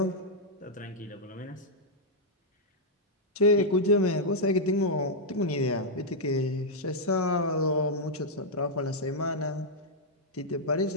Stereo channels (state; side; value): normal; both; correlation -0.05